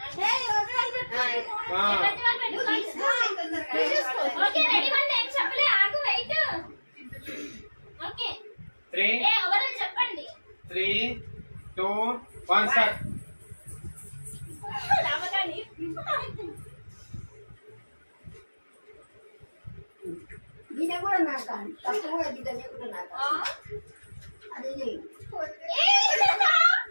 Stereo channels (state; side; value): inverted; both; correlation -1.00